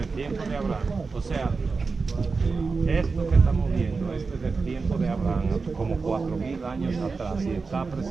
el tiempo de Abraham, o sea, esto que estamos viendo, esto es del tiempo de Abraham, como 4.000 años atrás, y está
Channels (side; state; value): left; quieter; 4.4 dB